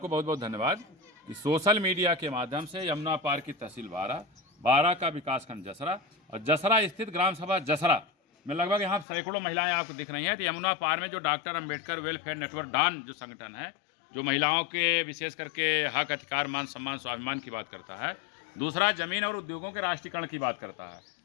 बहुत बहुत धन्यवाद कि सोशल मीडिया के माध्यम से यमुना पार की तहसील बारा का विकासखंड जसरा और जसरा स्थित ग्राम सभा जसरा में लगभग यहाँ सैकड़ों महिलाएं आपको दिख रही हैं। तो यमुना पार में जो डॉक्टर अंबेडकर वेलफेयर नेटवर्क डान जो संगठन है, जो महिलाओं के विशेष करके हक, अधिकार, मान सम्मान, स्वाभिमान की बात करता है। दूसरा, जमीन और उद्योगों के राष्ट्रीयकरण की बात करता है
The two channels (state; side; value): drops out; right; at 9.1 s